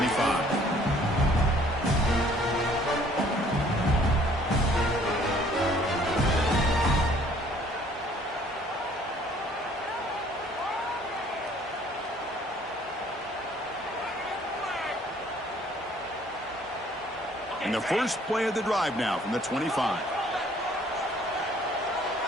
And the first play of the drive now from the 25.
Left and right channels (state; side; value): normal; both; correlation 0.58